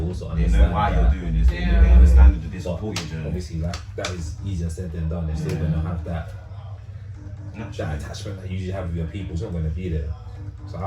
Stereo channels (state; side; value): identical; both; correlation 1.00